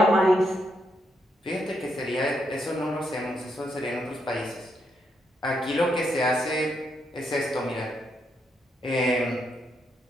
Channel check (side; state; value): both; normal; correlation 0.79